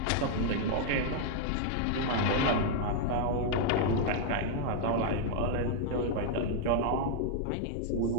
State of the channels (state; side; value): different; both; correlation -0.01